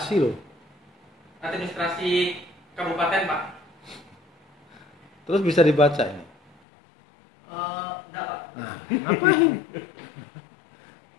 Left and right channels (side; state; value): right; drops out; at 6.5 s